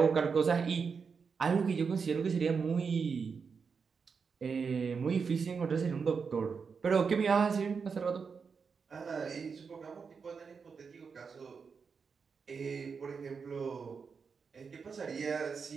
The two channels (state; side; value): quieter; left; 5.6 dB